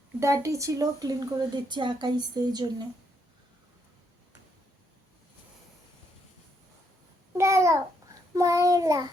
ডাটি ছিল ক্লিন করে দিচ্ছে আঁকাইছে এই জন্য। দাঁড়াও ময়লা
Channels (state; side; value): normal; both; correlation 0.75